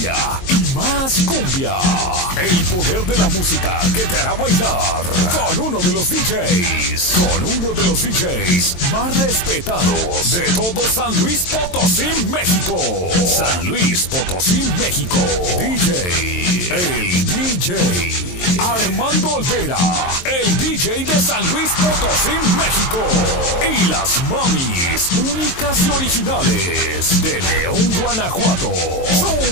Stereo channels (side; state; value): right; late; 23 ms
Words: y más cumbia. El poder de la música que te hará bailar con uno de los DJs más respetados de todo San Luis Potosí, México. San Luis Potosí, México. El DJ Armando Olvera, el DJ de San Luis Potosí, México. Y las mamis únicas y originales de León, Guanajuato.